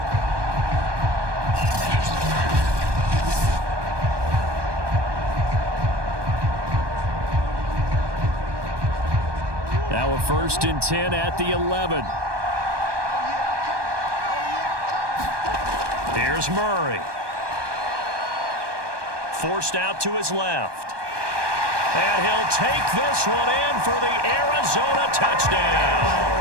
Now a 1st and 10 at the 11. Here's Murray. Forced out to his left. And he'll take this one in for the Arizona touchdown.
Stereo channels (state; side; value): late; left; 1.2 ms